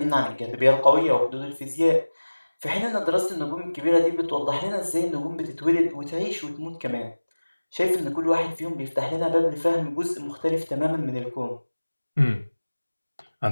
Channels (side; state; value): both; inverted; correlation -1.00